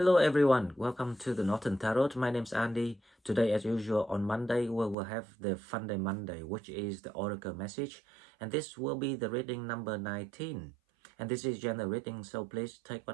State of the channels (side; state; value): left; drops out; at 5.0 s